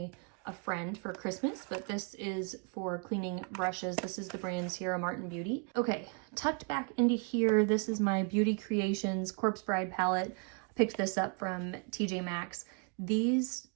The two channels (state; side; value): quieter; left; 34.9 dB